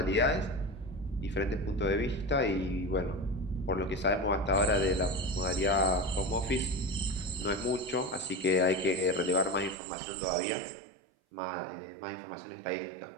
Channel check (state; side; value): drops out; left; at 9.8 s